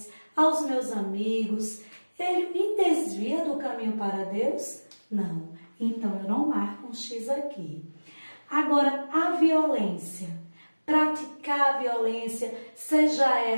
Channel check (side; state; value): both; inverted; correlation -1.00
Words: aos meus amigos, ele me desvia do caminho para Deus? Não. Então, eu não marco um X aqui. Agora, a violência. Praticar a violência, seja